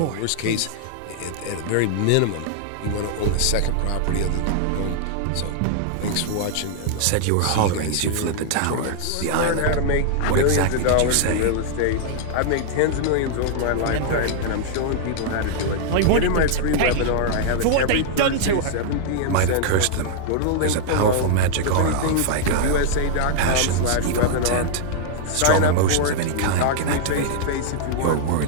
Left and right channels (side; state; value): both; different; correlation -0.01